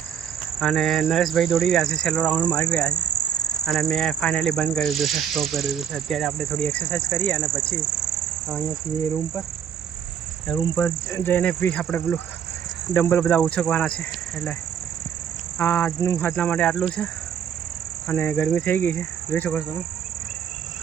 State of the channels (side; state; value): left; quieter; 8.5 dB